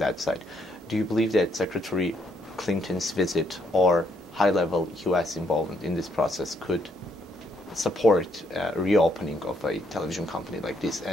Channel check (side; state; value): both; normal; correlation 0.73